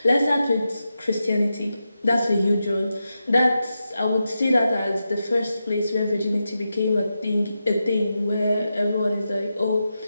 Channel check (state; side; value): inverted; both; correlation -0.89